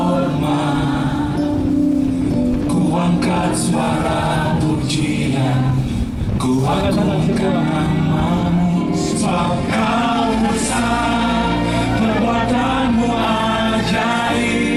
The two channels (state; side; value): identical; both; correlation 1.00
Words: Ku angkat suara pujian, ku agungkan namamu, sebab kau besar, perbuatanmu